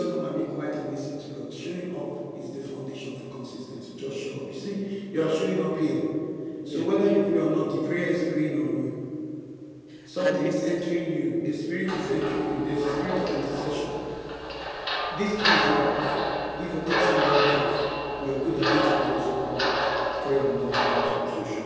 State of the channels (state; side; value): identical; both; correlation 1.00